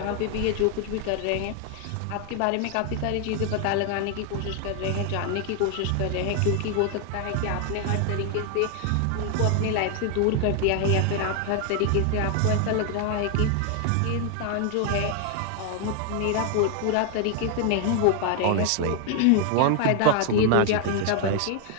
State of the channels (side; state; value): both; different; correlation 0.00